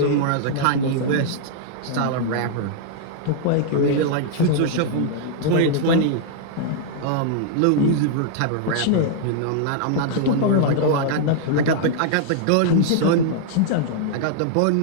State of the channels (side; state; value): both; different; correlation -0.01